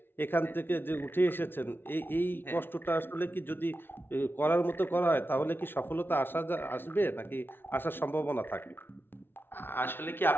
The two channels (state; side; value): late; right; 0.11 ms